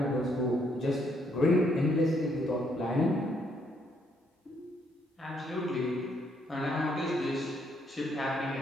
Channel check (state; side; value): normal; both; correlation 0.72